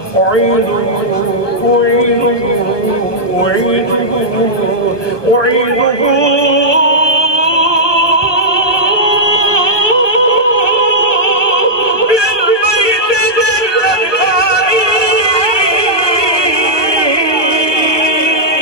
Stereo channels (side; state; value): right; late; 1.2 ms